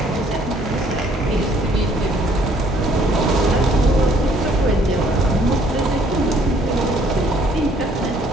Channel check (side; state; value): both; normal; correlation 0.62